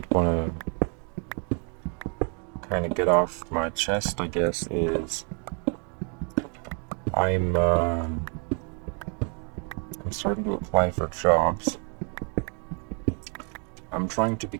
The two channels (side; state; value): left; quieter; 39.5 dB